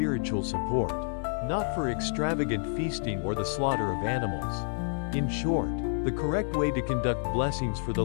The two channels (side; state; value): right; silent; digital silence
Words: support, not for extravagant feasting or the slaughter of animals. In short, the correct way to conduct blessings for the